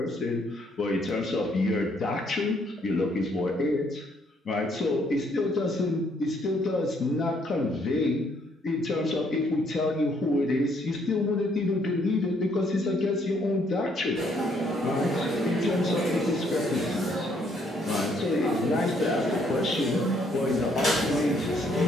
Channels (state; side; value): normal; both; correlation 0.69